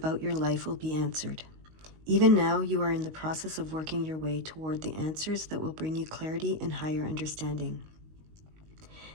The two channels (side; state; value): left; late; 19 ms